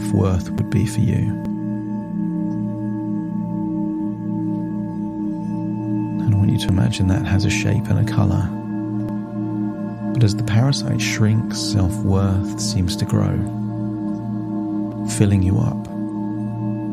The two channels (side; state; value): both; identical; correlation 1.00